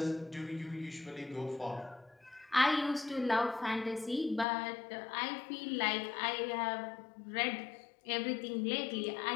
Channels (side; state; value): right; drops out; at 4.5 s